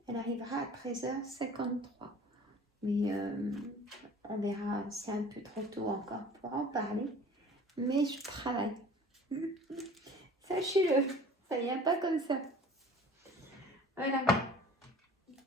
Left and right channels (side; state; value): both; normal; correlation 0.46